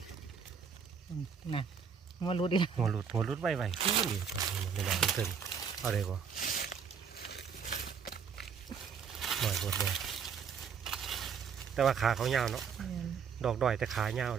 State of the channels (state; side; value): quieter; left; 6.7 dB